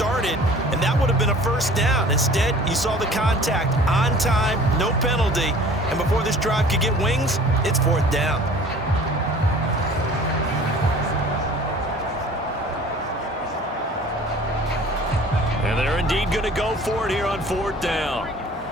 and that would have been a 1st down. Instead, you saw the contact on time, no penalty, and before this drive could get wings, it's 4th down. And they're indeed going to go for it here on 4th down.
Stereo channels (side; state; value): both; normal; correlation 0.47